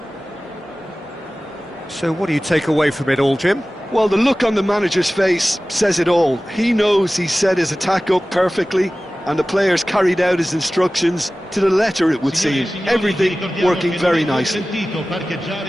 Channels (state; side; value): normal; both; correlation 0.97